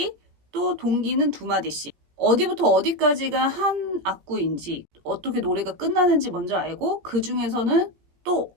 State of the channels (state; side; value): late; left; 17 ms